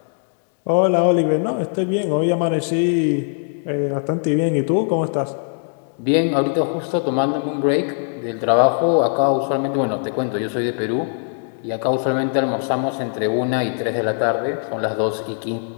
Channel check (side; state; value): right; silent; 62 dB below the other